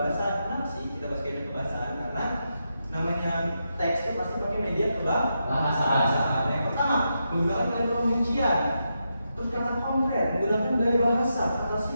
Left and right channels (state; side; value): inverted; both; correlation -0.85